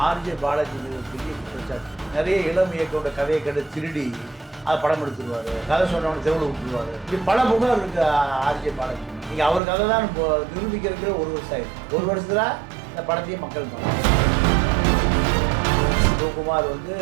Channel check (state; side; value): drops out; left; at 9.6 s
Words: ஆர்ஜே பாலாஜி பெரிய குற்றச்சாட்டு. நிறைய இளம் இயக்கோட கதையை கண்டு திருடி அதை படம் எடுத்துருவாரு, கதை சொன்னவனை தெருவில் விட்டுருவாரு. இப்படி பல புகார் இருக்கு ஆர்ஜே பாலாஜி. நீங்கள் அவர் கதை தான் நிரூபிக்கிறதுக்கு ஒரு வருஷம் ஆயிடுச்சு. ஒரு வருஷத்துல இந்த படத்தையே மக்கள் பார்க்கலாம். சிவகுமார் வந்து